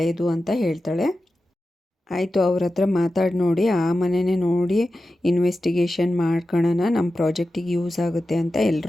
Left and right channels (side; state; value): both; normal; correlation 0.93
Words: ಅಂತ ಹೇಳ್ತಾಳೆ. ಆಯಿತು, ಅವ್ರ ಹತ್ರ ಮಾತಾಡಿ ನೋಡಿ, ಆ ಮನೆಯೇ ನೋಡಿ ಇನ್ವೆಸ್ಟಿಗೇಷನ್ ಮಾಡ್ಕೊಳ್ಳೋಣ, ನಮ್ಮ ಪ್ರಾಜೆಕ್ಟಿಗೆ ಯೂಸ್ ಆಗುತ್ತೆ ಅಂತ